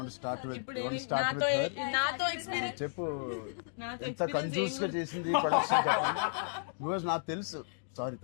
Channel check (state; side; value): silent; right; digital silence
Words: to start with her? నాతో ఎక్స్పీరియన్స్ చెప్పు. ఎంత కన్ఫ్యూజ్ గా చేసింది ప్రొడక్షన్ చెప్పండి. బికాజ్ నాకు తెలుసు. సారీ